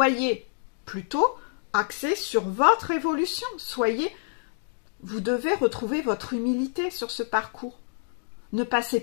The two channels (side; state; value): right; silent; digital silence